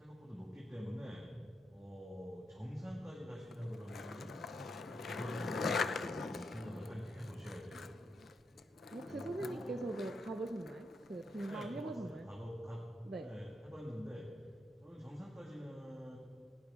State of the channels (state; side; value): normal; both; correlation 0.82